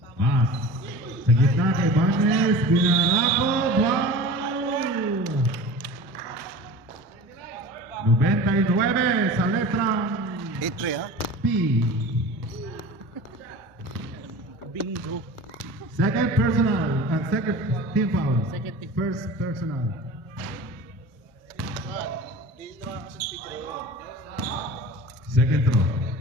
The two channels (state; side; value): normal; both; correlation 0.37